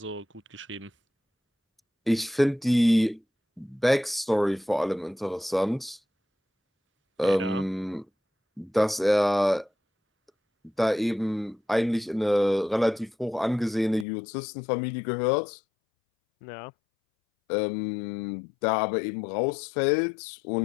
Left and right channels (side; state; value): right; drops out; at 14.1 s